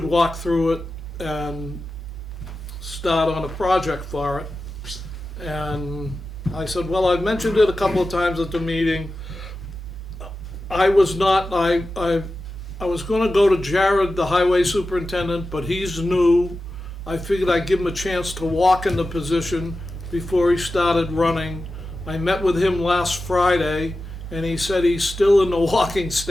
walk through it and start on a project for it. And I said, well, I've mentioned it a couple of times at the meeting. I was gonna go to Jared, the highway superintendent, but he's new. I figured I'd give him a chance to walk in the position before he started running. I met with him last Friday, and he said he's still in the walking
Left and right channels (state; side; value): normal; both; correlation 0.93